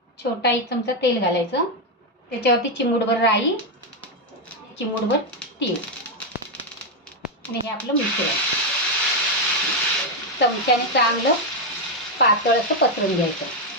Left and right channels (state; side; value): normal; both; correlation 0.04